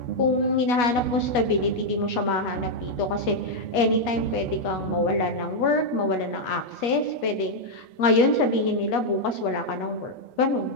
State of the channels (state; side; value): late; right; 8.3 ms